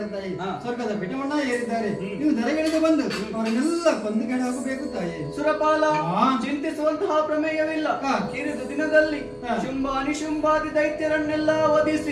ತಾಯಿ. ಸ್ವರ್ಗದ ಬೆಟ್ಟವನ್ನ ಏರಿದ್ದಾರೆ. ನೀವು ದರಗಿಳಿದು ಬಂದು ಅವರನ್ನೆಲ್ಲ ಕೊಂದುಗಡೆ ಹೋಗಬೇಕು ತಾಯಿ. ಸುರಪಾಲ, ಚಿಂತಿಸುವಂತಹ ಪ್ರಮೇಯವಿಲ್ಲ. ಕಿರಿದು ದಿನದಲ್ಲಿ ಶುಂಭ ಅನಿಶುಂಭಾದಿ ದೈತ್ಯರನ್ನೆಲ್ಲ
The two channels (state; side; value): identical; both; correlation 1.00